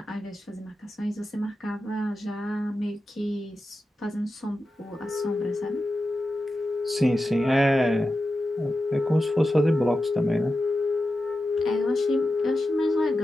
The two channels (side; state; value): both; normal; correlation 0.91